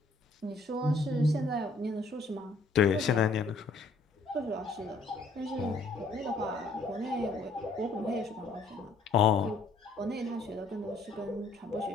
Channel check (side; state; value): right; quieter; 3.4 dB